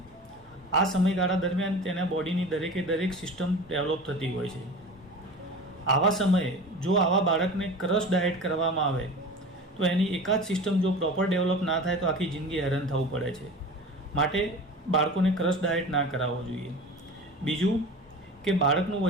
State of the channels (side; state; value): both; normal; correlation 0.35